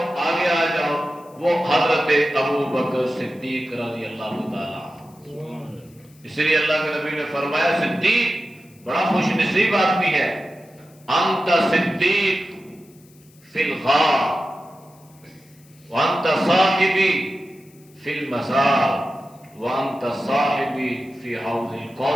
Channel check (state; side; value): noise; left; hiss, 29 dB below the sound